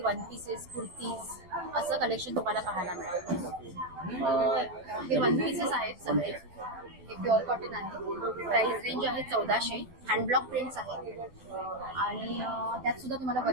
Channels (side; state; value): left; late; 12 ms